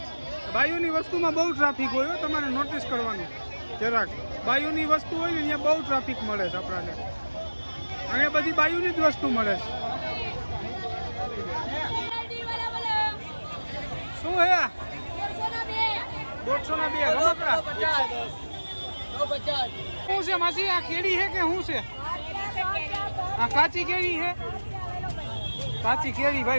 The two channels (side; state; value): both; inverted; correlation -1.00